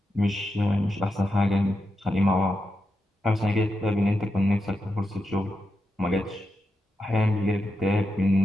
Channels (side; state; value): both; normal; correlation 0.87